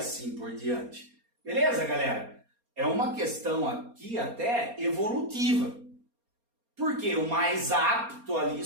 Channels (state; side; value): late; left; 4.3 ms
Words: por diante. Beleza, galera? É uma questão aqui até evolutiva. Porque o mais apto ali